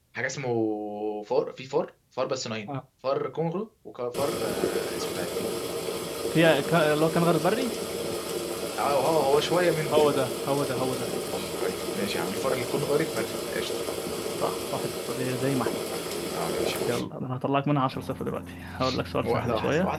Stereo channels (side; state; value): both; identical; correlation 1.00